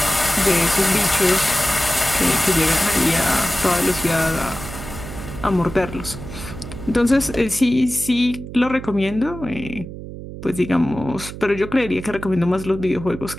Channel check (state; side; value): noise; right; hum, 11 dB below the sound